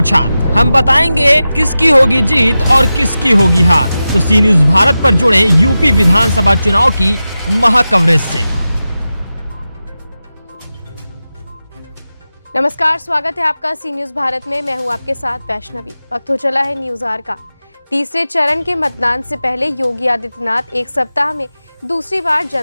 हम बताएंगे किसकी होगी जीत और किसकी होगी हार। तो सी न्यूज भारत पर जुड़े यूपी विधानसभा चुनाव की महा कवरेज से। नमस्कार, स्वागत है आपका सी न्यूज भारत में। मैं हूं आपके साथ वैष्णवी। वक्त हो चला है न्यूज आवर का। तीसरे चरण के मतदान से पहले योगी आदित्यनाथ एक सप्ताह में दूसरी बार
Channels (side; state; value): both; inverted; correlation -0.93